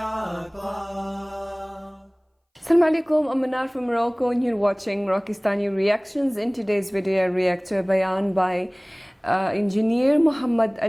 alaikum, I'm Manar from Morocco and you're watching Rockistani Reactions. In today's video, I react to a bayan by Engineer Muhammad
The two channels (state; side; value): identical; both; correlation 1.00